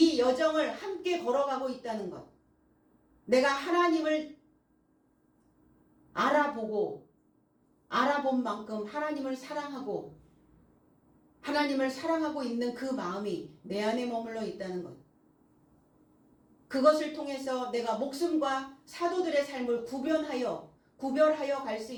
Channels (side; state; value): both; identical; correlation 1.00